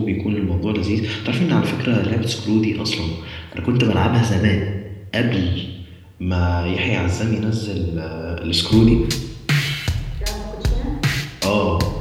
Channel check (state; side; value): identical; both; correlation 1.00